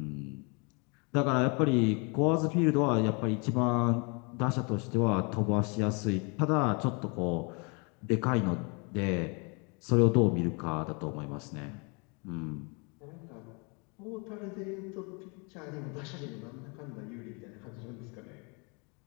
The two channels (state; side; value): quieter; right; 32.8 dB